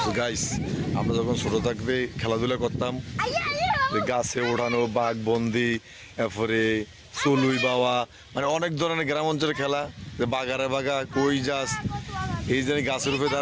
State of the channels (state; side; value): identical; both; correlation 1.00